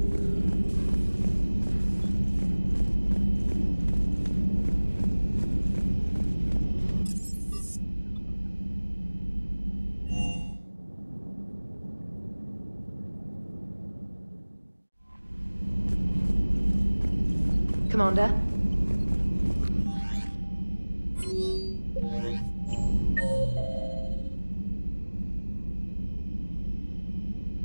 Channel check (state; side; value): inverted; both; correlation -1.00